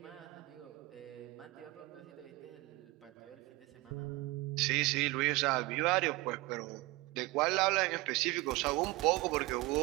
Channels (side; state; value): left; quieter; 21.8 dB